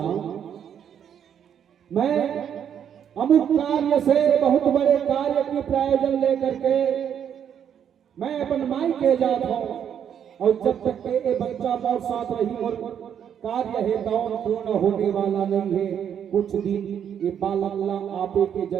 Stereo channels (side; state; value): left; quieter; 8.7 dB